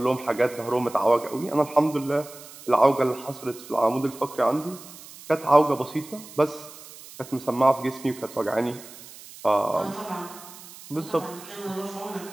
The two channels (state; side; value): noise; right; hiss, 17 dB below the sound